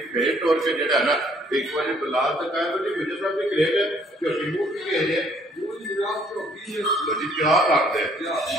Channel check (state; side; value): normal; both; correlation 0.62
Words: फेट तोड़ के जो है ना एक बार बलाल दिखाया जी गुजर साहब की ग्रेट झोटी मुँह की गई है जी क्या रखते